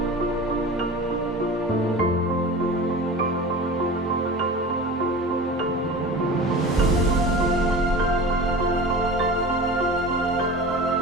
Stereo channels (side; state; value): both; normal; correlation 0.35